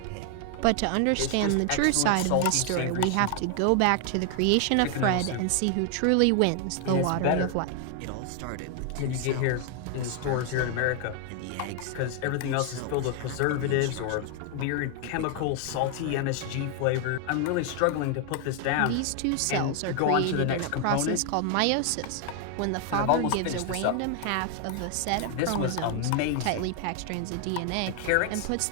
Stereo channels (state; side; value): different; both; correlation 0.00